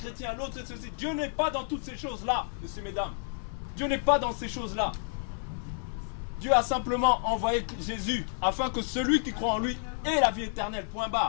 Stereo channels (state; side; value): silent; right; 55 dB below the other